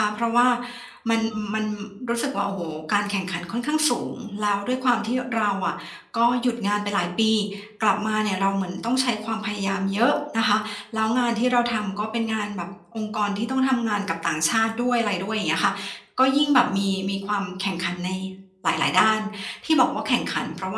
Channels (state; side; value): identical; both; correlation 1.00